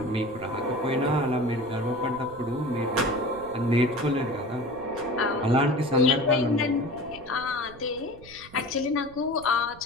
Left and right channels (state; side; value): noise; right; rumble, 20 dB below the sound